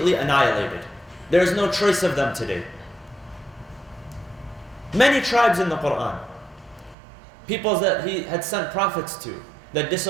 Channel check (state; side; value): drops out; left; at 7.0 s